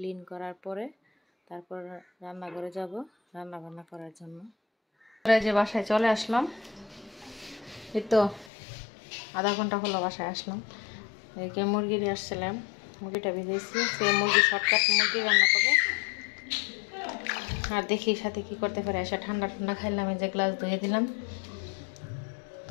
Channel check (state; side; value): drops out; right; at 8.5 s